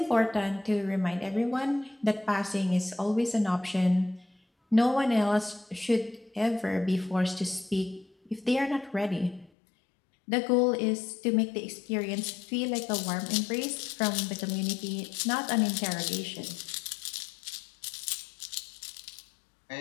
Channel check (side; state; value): right; drops out; at 9.5 s